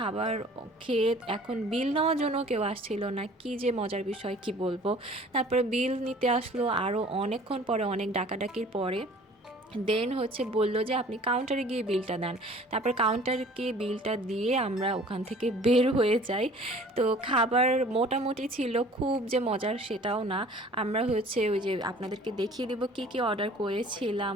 খেয়ে এখন বিল নেওয়ার জন্য কেউ আসছিল না। কি যে মজার বিষয়, কি বলবো। তারপরে বিল নিতে আসলো আরও অনেকক্ষণ পরে, অনেক ডাকাডাকির পরে। দেন হচ্ছে বলল যে আপনি কাউন্টারে গিয়ে বিলটা দেন। তারপর কাউন্টারে গিয়ে বিলটা দিয়ে আমরা ওখান থেকে বের হয়ে যাই। তো খাবার মোটামুটি ছিল, খুব যে মজার সেটাও না। আমরা হচ্ছে ওই যে আপনাদেরকে দেখিয়ে দেবো কী কী অর্ডার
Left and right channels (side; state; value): both; normal; correlation 0.50